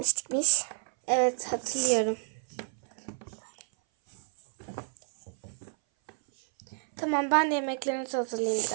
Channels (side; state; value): left; silent; 58 dB below the other